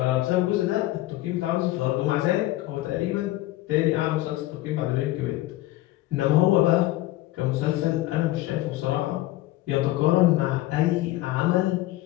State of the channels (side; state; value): right; quieter; 16.8 dB